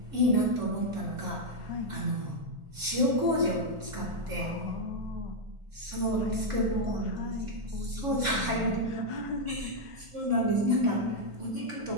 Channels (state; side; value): late; left; 1.5 ms